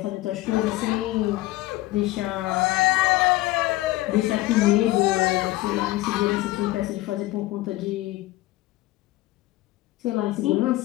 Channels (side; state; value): right; quieter; 17.9 dB